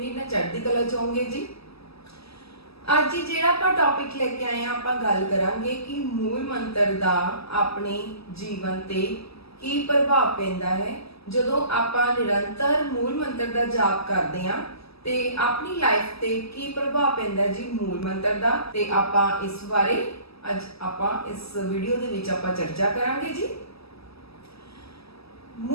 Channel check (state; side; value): late; right; 0.78 ms